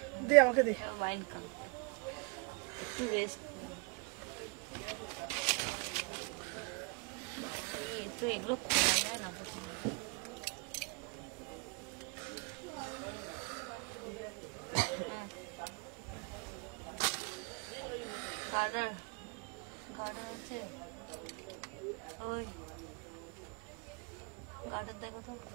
দে, আমাকে দে। এগুলো খোলা যায় না। গার্ডার আছে ওই গার্ডার দেখো তো,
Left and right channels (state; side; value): quieter; left; 32.4 dB